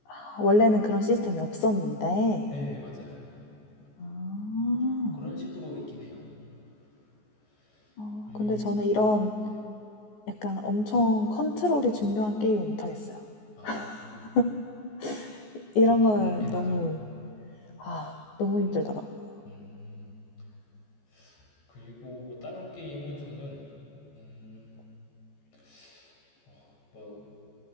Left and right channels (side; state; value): right; late; 14 ms